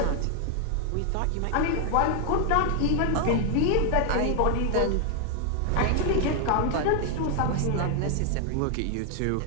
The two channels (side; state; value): both; different; correlation 0.00